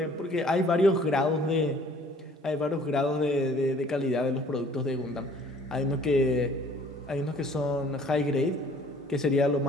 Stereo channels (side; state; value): both; normal; correlation 0.54